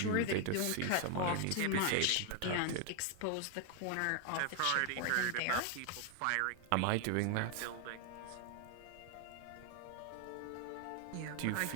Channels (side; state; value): both; different; correlation 0.00